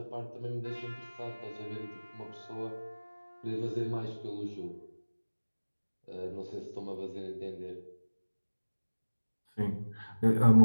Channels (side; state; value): both; inverted; correlation -1.00